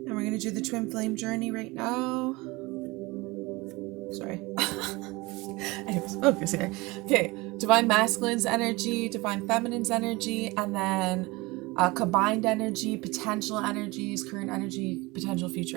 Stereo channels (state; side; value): quieter; left; 23.1 dB